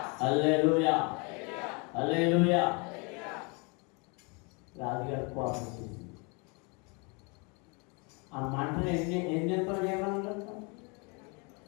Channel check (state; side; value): quieter; right; 32.1 dB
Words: హల్లెలూయా, హల్లెలూయా. రాజుగారి కోపం చేసింది. ఆ మంటను ఎన్ని ఎంతలు చేయమన్నారు?